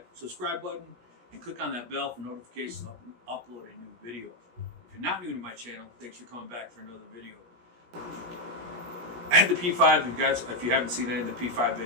subscribe button and click on that bell for notifications of upload a new video. If you're not new to my channel, thanks for coming back for another video. I had the P5. You guys, if you haven't seen any of the P5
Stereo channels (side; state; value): left; late; 17 ms